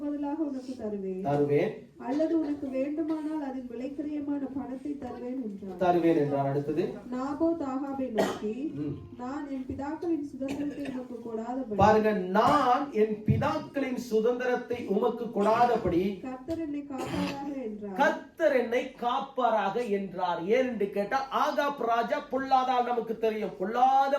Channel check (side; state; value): both; identical; correlation 1.00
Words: பதிலாக உனக்கு தருவேன். அல்லது உனக்கு வேண்டுமானால் அதன் விலைக்கிரயமான பணத்தை தருவேன் என்றார். அடுத்தது, நாபோத் ஆகாபை நோக்கி, நான் என் பிதாக்களின் சுதந்திரத்தை உமக்கு கொடாதபடி, பாருங்க, நான் என் பிதாக்களின் சுதந்திரத்தை உமக்கு கொடாதபடி கர்த்தர் என்னை காப்பாராக என்றார். கர்த்தர் என்னை காப்பாராக என்றார். ஏன் என்று கேட்டா, ஆகாப் ராஜா பொல்லாதால் நமக்கு தெரியும். பொல்லாத